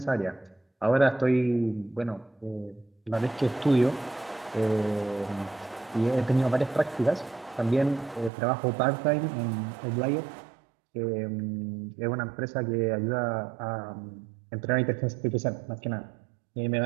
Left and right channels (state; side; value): drops out; left; at 8.3 s